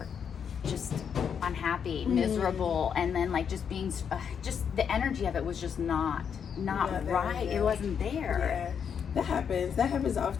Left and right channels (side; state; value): right; quieter; 7.4 dB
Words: just unhappy, miserable, and then, like, just being just the energy of it was just not right. It wasn't there. That happens